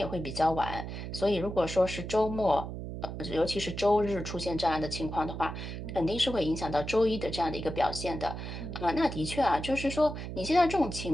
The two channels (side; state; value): right; noise; hum, 7 dB below the sound